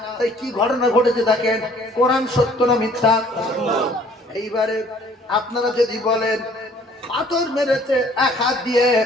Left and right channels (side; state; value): both; normal; correlation 0.57